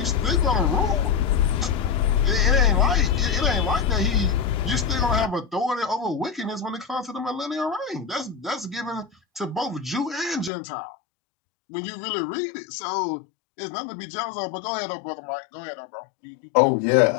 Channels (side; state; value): right; drops out; at 10.5 s